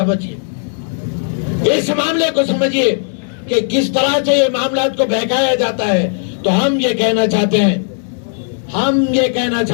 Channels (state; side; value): silent; right; 66 dB below the other